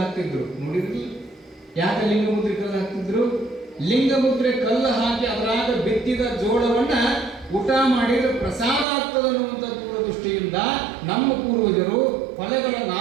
ಹಾಕ್ತಿದ್ರು, ನೋಡಿದ್ರಿ? ಯಾಕೆ ಲಿಂಗ ಮುದ್ರೆ ಕಲ್ಲು ಹಾಕ್ತಿದ್ರು? ಲಿಂಗ ಮುದ್ರೆ ಕಲ್ಲು ಹಾಕಿ ಅದರಾಗ ಬಿತ್ತಿದ ಜೋಳವನ್ನ ಊಟ ಮಾಡಿದ್ರೆ ಪ್ರಸಾದ ಆಗ್ತದೆ ಅನ್ನುವಂಥ ದೂರದೃಷ್ಟಿಯಿಂದ ನಮ್ಮ ಪೂರ್ವಜರು ಹೊಲಗಳ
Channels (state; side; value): drops out; left; at 8.8 s